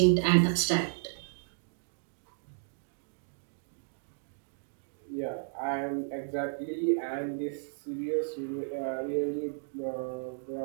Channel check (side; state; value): left; silent; digital silence